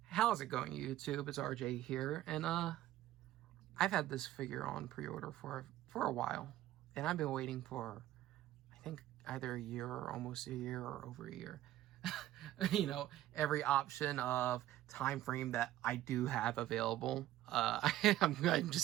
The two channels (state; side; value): quieter; left; 14.2 dB